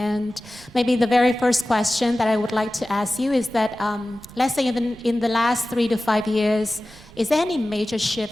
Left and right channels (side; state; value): both; normal; correlation 0.96